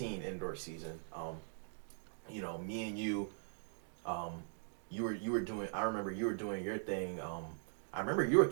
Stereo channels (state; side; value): silent; left; digital silence